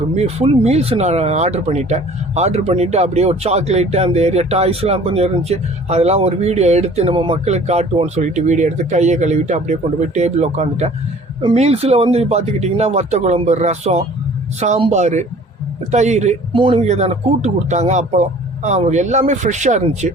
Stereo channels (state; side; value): normal; both; correlation 0.50